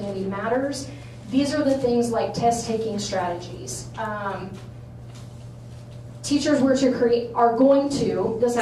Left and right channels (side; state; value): both; identical; correlation 1.00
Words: matters. These are the things like test-taking strategies. Teachers were to create, are going to, this